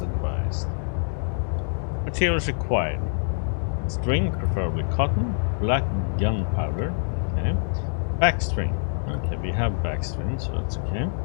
advised. Materials required. String, preferably cotton. Black gunpowder. Okay. Backstring. Okay, we have backstring, so that's okay.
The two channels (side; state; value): right; silent; digital silence